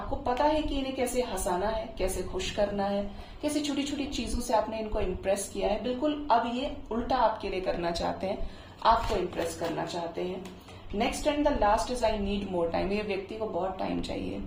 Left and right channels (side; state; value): both; identical; correlation 1.00